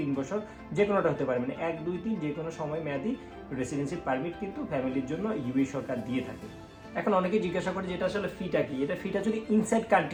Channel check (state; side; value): identical; both; correlation 1.00